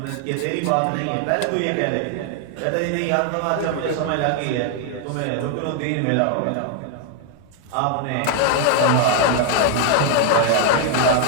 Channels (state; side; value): different; both; correlation 0.00